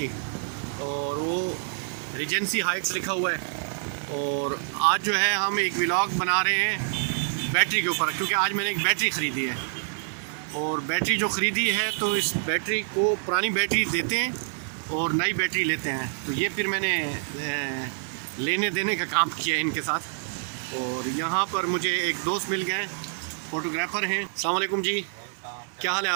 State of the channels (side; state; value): left; silent; digital silence